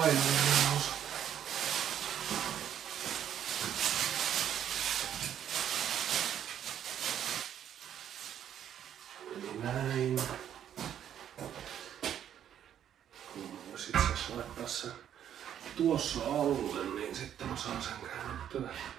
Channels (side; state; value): left; quieter; 9.9 dB